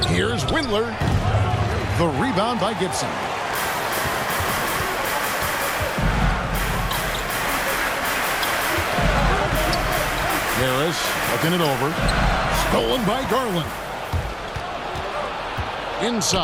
Here's Windler. The rebound by Gibson. Harris looking it over. Stolen by Garland.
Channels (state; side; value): identical; both; correlation 1.00